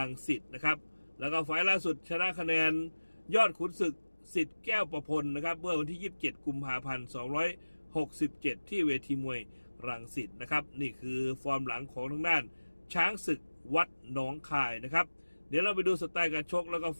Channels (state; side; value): inverted; both; correlation -1.00